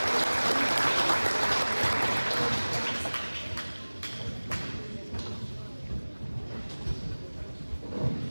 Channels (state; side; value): inverted; both; correlation -1.00